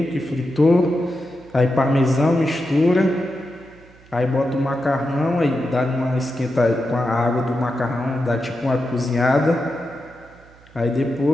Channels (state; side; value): noise; right; hum, 26 dB below the sound